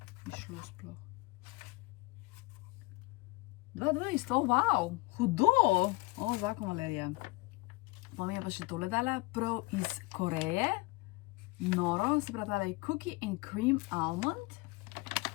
išlo sploh. 2-2, wow, hudo. O, zakon Valerija. Pa mi je pa še tole dala, prav iz Koreje. Noro, se pravi, tale je Cookie and Cream Almond.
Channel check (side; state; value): right; quieter; 23.3 dB